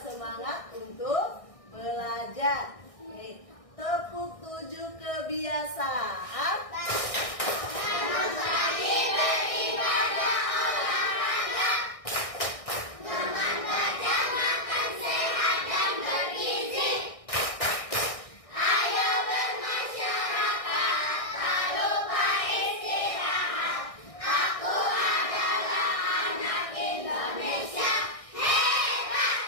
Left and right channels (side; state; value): right; late; 1.6 ms